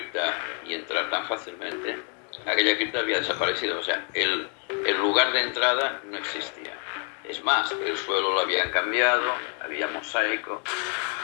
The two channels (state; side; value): quieter; right; 39.1 dB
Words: y entrar tan fácilmente, aquella cripta había desaparecido. O sea, el lugar de entrada no existía. Es más, el suelo lo habían cambiado, había mosaico.